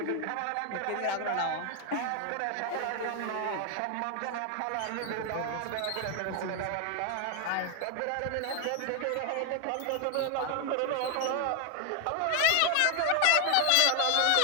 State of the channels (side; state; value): both; different; correlation 0.00